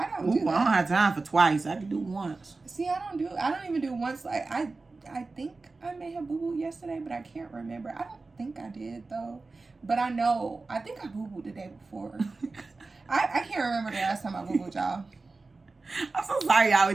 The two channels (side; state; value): left; quieter; 3.7 dB